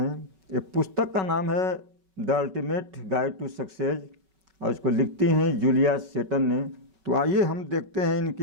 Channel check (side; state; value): left; late; 5.3 ms